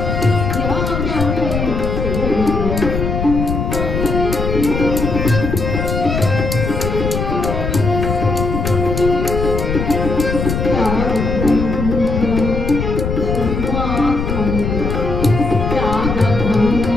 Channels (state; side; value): noise; left; rumble, 2 dB below the sound